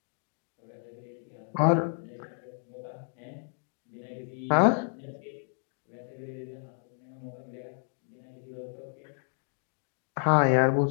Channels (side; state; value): right; silent; 57 dB below the other